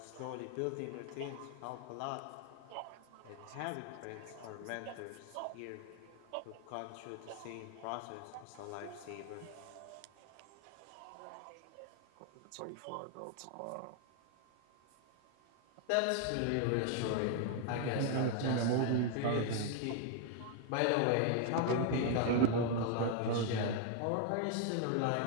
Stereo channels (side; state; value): both; different; correlation 0.00